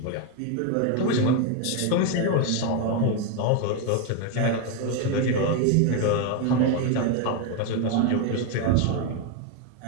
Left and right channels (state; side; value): different; both; correlation 0.01